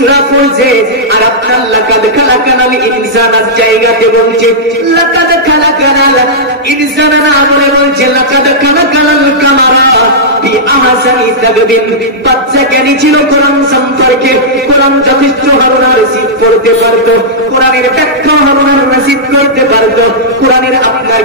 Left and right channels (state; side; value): normal; both; correlation -0.12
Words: পড়ছে, আর আপনার লাকাদ খালাকানাল ইনসানার জায়গাতে বলছে লাকাদ খালাকানাল ইনসানা, না বলে বলছে লাকাদ খালাকানাল কামারা ফি আহসানি তাকবীর। বাচ্চা জ্ঞানী ছিল কোরআন সম্পর্কে, কোরআন যথেষ্ট হারুন আর রশিদ পড়তে পারতো, কোরআনের ব্যাখ্যা হারুন আর রশিদ করতে পারতো, কোরআনের আপনার